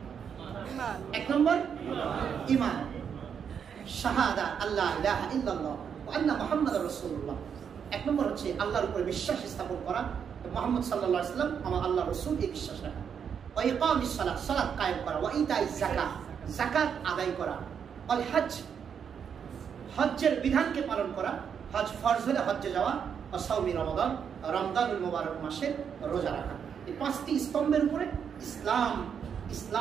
নম্বর ঈমান, শাহাদা আল্লা ইলাহা ইল্লাল্লাহ ওয়া আন্না মুহাম্মাদুর রাসূলুল্লাহ। এক নম্বর হচ্ছে আল্লাহর উপরে বিশ্বাস স্থাপন করা, মুহাম্মদ সাল্লাল্লাহু আলাইহি ওয়াসাল্লাম আমার আল্লাহ রাসূল, এই বিশ্বাস রাখা। ওয়া ইকামিস সালাত, সালাত কায়েম করা। ওয়া ইতাইজ যাকাত, যাকাত আদায় করা। ওয়াল হজ, হজ্জের বিধানকে পালন করা, হজ ফরজ হলে হজ্জে যাওয়া। ওয়া সাওমি রমাদান, রমজানুল মুবারক মাসের রোজা রাখা। এই পাঁচটি স্তম্ভের উপরে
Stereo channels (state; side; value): quieter; left; 7.4 dB